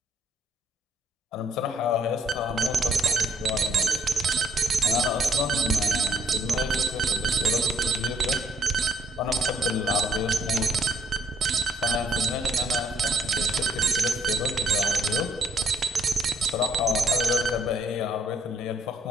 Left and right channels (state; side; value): normal; both; correlation 0.67